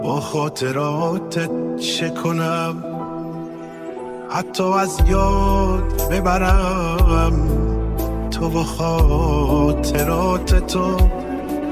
با خاطراتت چه کنم؟ حتی از یاد ببرم تو و خاطرات تو.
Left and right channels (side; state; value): both; identical; correlation 1.00